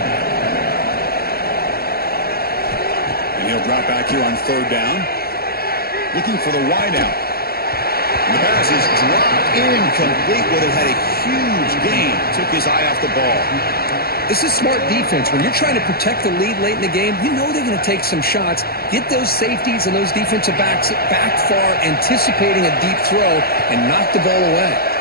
He'll drop back here on third down. Looking for the wideout. And the pass is dropped incomplete. Would have had a huge gain. Took his eye off the ball. This is smart defense. When you're trying to protect the lead late in the game, you know they're going to take some shots. Get those safeties and those defensive backs back far, anticipating a deep throw, and knock the ball away.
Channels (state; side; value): late; right; 0.45 ms